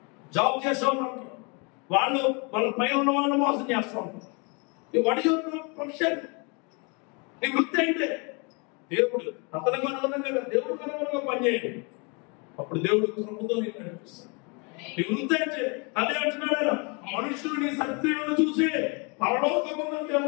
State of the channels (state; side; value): quieter; right; 32.4 dB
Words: Job చేసేవాళ్ళు వాళ్ళు వాళ్ళ పైన ఉన్న వాళ్ళు మోసం చేస్తూ ఉంటారు. What is your profession? నీ వృత్తి ఏంటి? దేవుడు అతనికి అనుగుణంగా దేవుడికి అనుగుణంగా పనిచేయండి. అప్పుడు దేవుడు కృపతో నేను నడిపిస్తాను. నీ వృత్తి ఏంటి? అదే అంటున్నాడు, మనుషులు నీ శక్తులను చూసి పరలోకమున్న